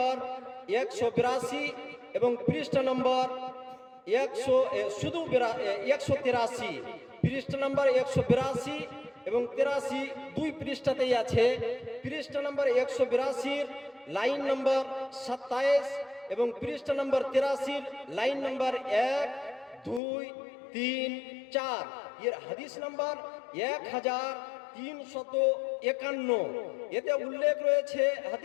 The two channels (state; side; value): drops out; right; at 20.0 s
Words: 182 এবং পৃষ্ঠা নম্বর 183, পৃষ্ঠা নম্বর 182 এবং 83, দুই পৃষ্ঠাতেই আছে। পৃষ্ঠা নম্বর 182 লাইন নম্বর 27 এবং পৃষ্ঠা নম্বর 83 লাইন নম্বর 1, 2, 3, 4, এর হাদিস নম্বর 1351। এতে উল্লেখ রয়েছে